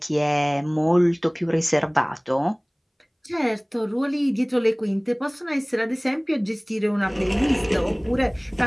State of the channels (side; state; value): both; identical; correlation 1.00